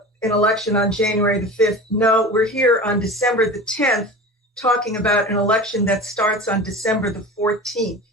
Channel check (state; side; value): normal; both; correlation 0.33